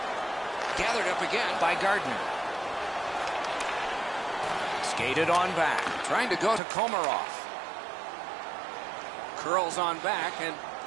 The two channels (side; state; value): left; drops out; at 6.6 s